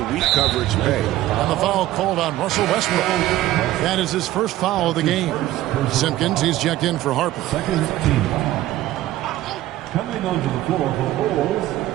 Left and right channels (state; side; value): quieter; left; 15.0 dB